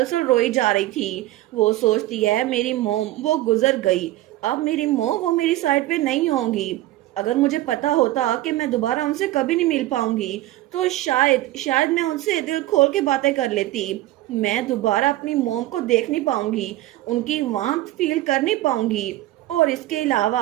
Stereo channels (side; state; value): left; quieter; 16.1 dB